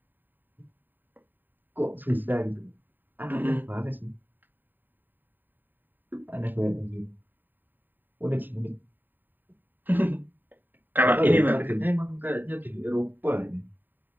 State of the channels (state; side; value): late; left; 0.091 ms